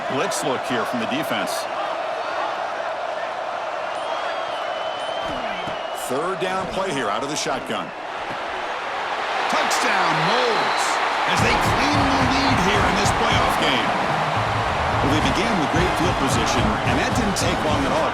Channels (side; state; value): both; identical; correlation 1.00